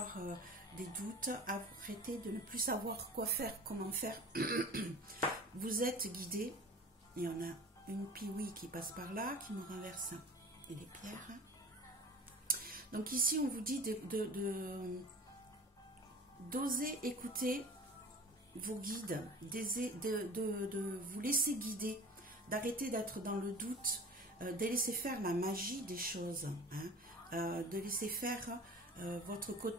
des doutes, arrêtez de ne plus savoir quoi faire, comment faire. Vous êtes guidé. Il y en a une piouille qui passe par là, qui me renverse et les pierres. Donc ici, on vous dit d'oser écouter vos guides, de vous laisser guider, d'arrêter d'être dans le doute, de laisser faire la magie des choses, hein, de laisser faire votre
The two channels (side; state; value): both; normal; correlation 0.40